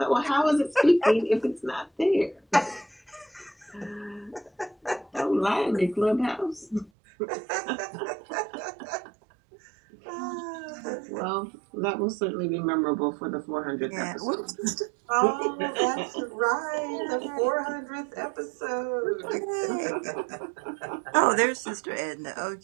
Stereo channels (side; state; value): left; drops out; at 6.9 s